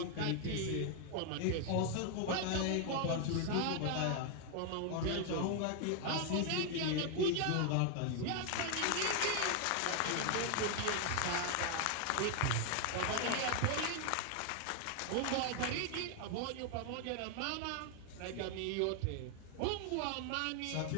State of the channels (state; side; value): different; both; correlation 0.00